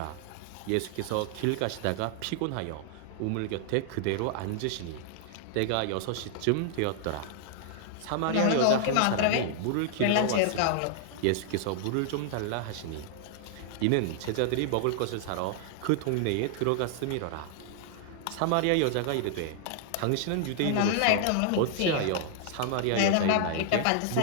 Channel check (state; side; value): different; both; correlation 0.00